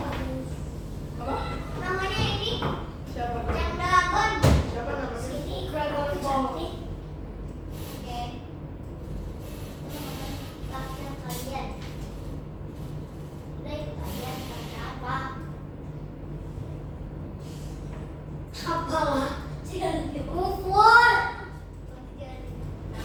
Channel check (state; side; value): identical; both; correlation 1.00